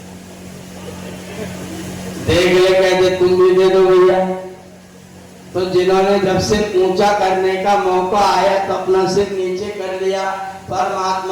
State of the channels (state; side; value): identical; both; correlation 1.00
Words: देख ले, कहते तुम भी दे दो भैया। तो जिन्होंने जब सिर ऊंचा करने का मौका आया तो अपना सिर नीचे कर लिया,